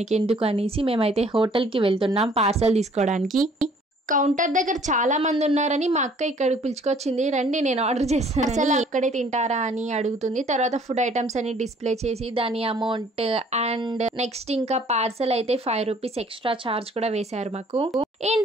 అనేసి మేమైతే హోటల్కి వెళ్తున్నాం పార్సల్ తీసుకోవడానికి. కౌంటర్ దగ్గర చాలా మంది ఉన్నారని మా అక్క ఇక్కడికి పిలుచుకొచ్చింది, రండి నేను ఆర్డర్ చేస్తాను, అసలు అక్కడే తింటారా అని అడుగుతుంది. తర్వాత ఫుడ్ ఐటమ్స్ అని డిస్ప్లే చేసి దాని అమౌంట్ అండ్ నెక్స్ట్ ఇంకా పార్సల్ అయితే 5 రూపీస్ ఎక్స్ట్రా చార్జ్ కూడా వేశారు మాకు.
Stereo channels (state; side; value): normal; both; correlation 0.57